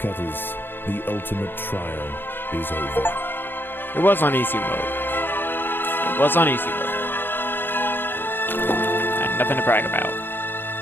the ultimate trial is over. It was on easy mode. It was on easy mode. And nothing to brag about.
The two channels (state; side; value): late; right; 0.099 ms